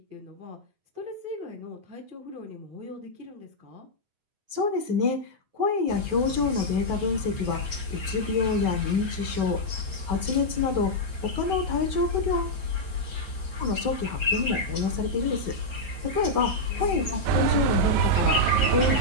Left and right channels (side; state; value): left; late; 9.3 ms